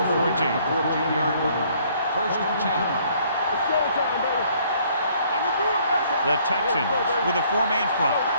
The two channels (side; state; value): both; inverted; correlation -0.62